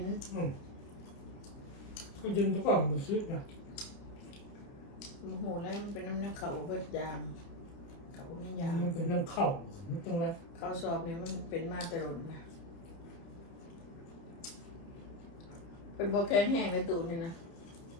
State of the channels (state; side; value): late; right; 30 ms